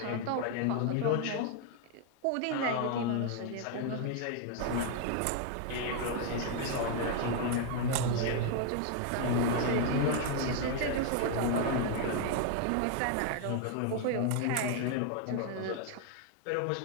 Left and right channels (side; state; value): both; different; correlation 0.00